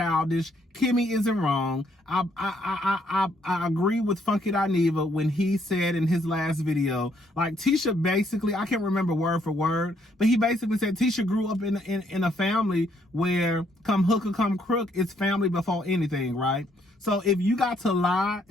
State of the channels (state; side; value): normal; both; correlation 0.70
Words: Kimmy isn't wrong. I agree with Funky Dineva when he said in his last video, like, Tisha basically, I can't remember word for word, but he basically said Tisha grew up in a family where come hook or come crook, it's family before anything, right? So if you got to lie